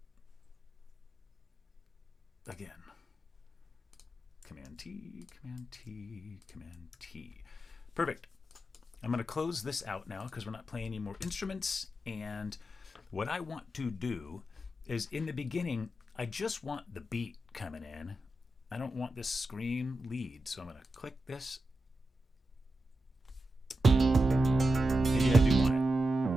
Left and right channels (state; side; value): normal; both; correlation 0.89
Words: Again, Command T, Command T, Command T. Perfect. I'm going to close this out now because we're not playing any more instruments. And what I want to do is in the beginning, I just want the beat coming in. I don't want this scream lead. So I'm going to click this. Maybe I do want it.